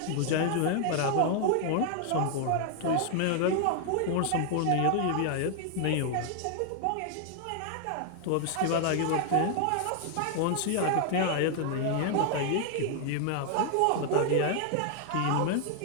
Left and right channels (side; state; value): both; different; correlation 0.00